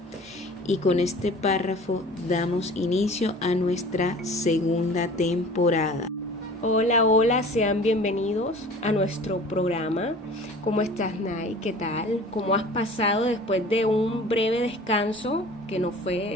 Y con este párrafo damos inicio a nuestra segunda temporada. Hola, sean bienvenidos a nuestro programa. ¿Cómo estás, Nay? ¿Qué tal? ¿Cómo has pasado después de un breve descanso? Que no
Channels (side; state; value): both; normal; correlation 0.44